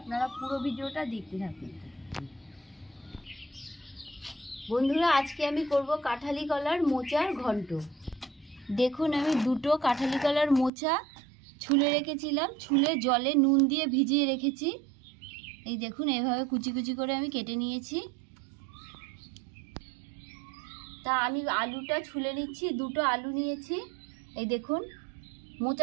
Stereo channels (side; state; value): left; drops out; at 10.7 s